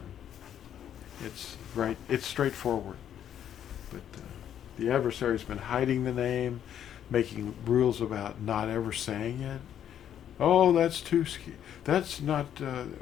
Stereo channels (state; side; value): quieter; right; 9.9 dB